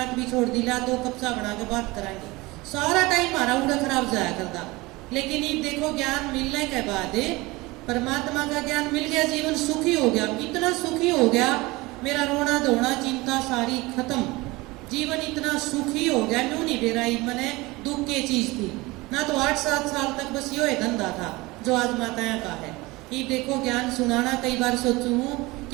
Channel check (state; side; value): quieter; left; 22.0 dB